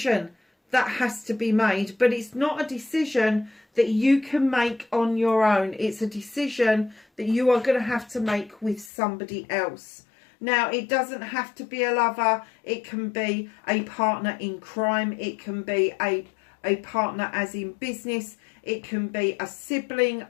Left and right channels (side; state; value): right; drops out; at 8.9 s